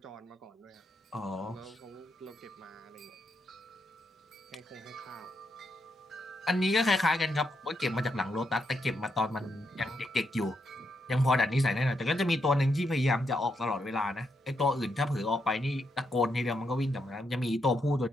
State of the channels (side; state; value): both; normal; correlation 0.81